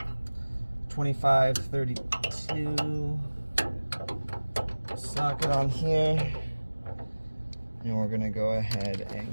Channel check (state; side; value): inverted; both; correlation -1.00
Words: 2532 socket on here. And we're gonna go ahead